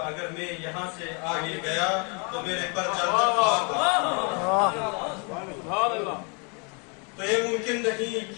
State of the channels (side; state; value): right; quieter; 35.1 dB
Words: اگر میں یہاں سے آگے گیا تو میرے پر تو یہ